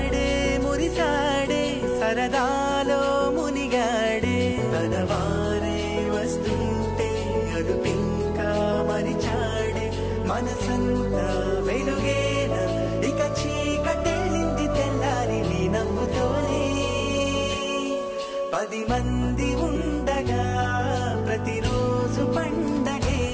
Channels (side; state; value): both; identical; correlation 1.00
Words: మురిసాడే సరదాలో మునిగాడే తనవారే వస్తుంటే అదుపింకా మరిచాడే మనసంతా వెలుగేన ఇక చీకటెళ్ళింది తెల్లారి నీ నవ్వుతోనే 10 మంది ఉండగా ప్రతిరోజు పండగే